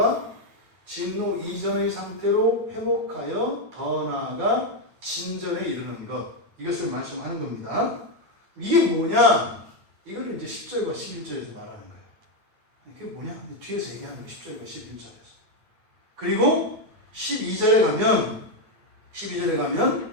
진노 이전의 상태로 회복하여 더 나아가 진전에 이르는 것, 이것을 말씀하는 겁니다. 이게 뭐냐? 이거를 이제 10절과 11절에서 말하는 거예요. 그게 뭐냐? 뒤에서 얘기하는 거예요. 10절과 11절에서. 그리고 12절에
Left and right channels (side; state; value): left; late; 9.0 ms